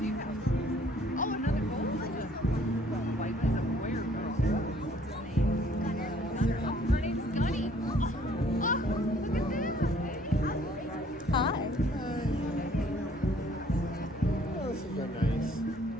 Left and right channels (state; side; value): normal; both; correlation 0.59